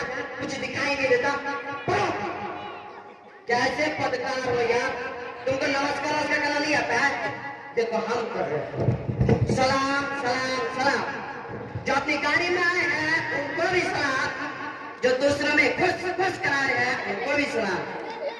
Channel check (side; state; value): both; identical; correlation 1.00